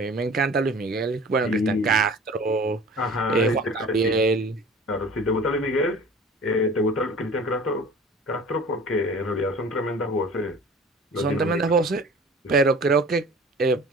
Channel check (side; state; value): both; normal; correlation 0.43